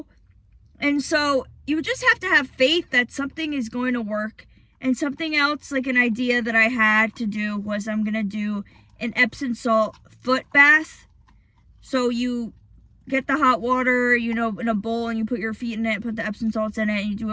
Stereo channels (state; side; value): identical; both; correlation 1.00